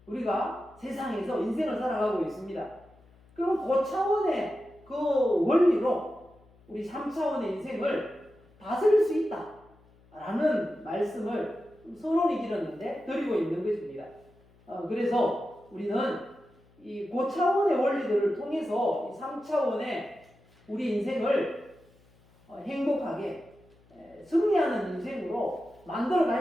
우리가 세상에서 인생을 살아가고 있습니다. 그럼 그 차원의 그 원리로 우리 3차원의 인생을 다스릴 수 있다라는 말씀을 선언이 길었는데 드리고 있는 것입니다. 그래서 우리는 이 고차원의 원리들을 통해서 이 3차원의 우리 인생을 행복하게 승리하는 인생으로 만들어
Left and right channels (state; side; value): noise; left; hum, 29 dB below the sound